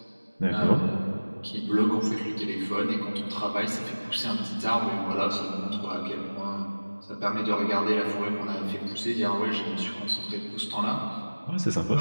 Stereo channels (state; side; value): inverted; both; correlation -1.00